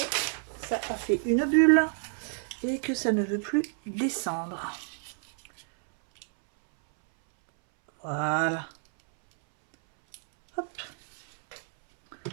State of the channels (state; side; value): silent; left; 59 dB below the other